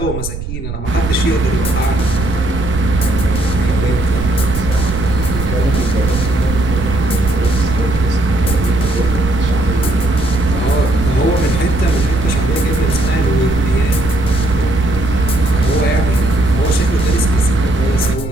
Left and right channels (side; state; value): right; noise; rumble, 7 dB below the sound